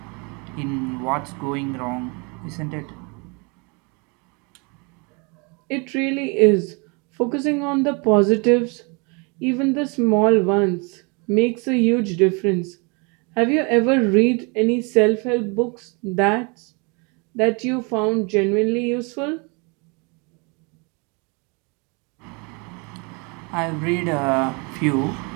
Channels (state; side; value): quieter; left; 31.5 dB